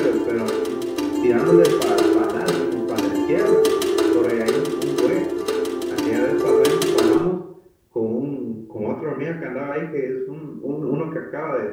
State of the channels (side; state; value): both; identical; correlation 1.00